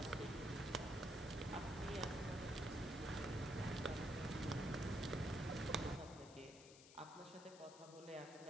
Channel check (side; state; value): left; noise; hiss, 17 dB below the sound